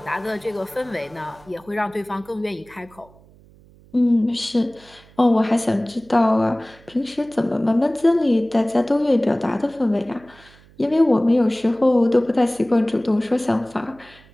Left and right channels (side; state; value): right; noise; hum, 27 dB below the sound